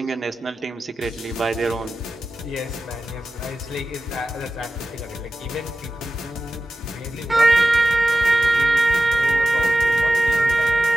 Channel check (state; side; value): normal; both; correlation 0.93